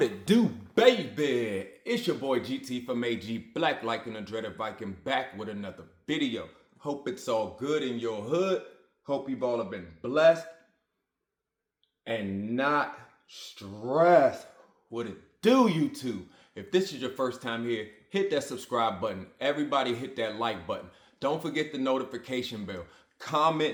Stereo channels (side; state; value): both; identical; correlation 1.00